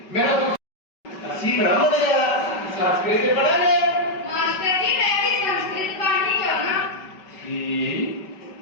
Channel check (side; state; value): right; late; 5.3 ms